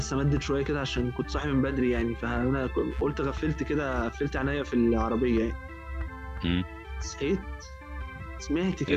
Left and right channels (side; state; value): both; identical; correlation 1.00